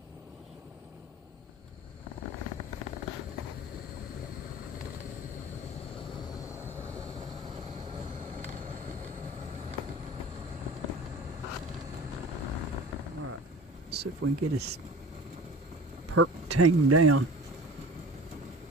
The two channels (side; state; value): both; normal; correlation 0.40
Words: See if we can get his perk tamed down.